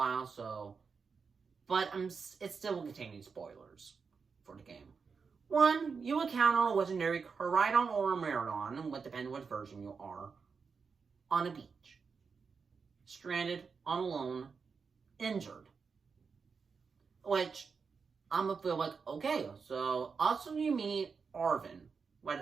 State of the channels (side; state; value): left; quieter; 5.4 dB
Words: so... But it still will contain spoilers for the game. 1, you encounter a legendary Koraidon or a Miraidon, and what depends which version you are, on a beach. Stranded, on alone, injured. Which, I'm gonna feel like, okay, so also you meet Arven. What